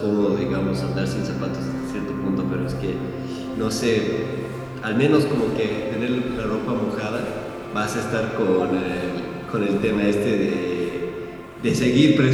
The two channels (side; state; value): both; identical; correlation 1.00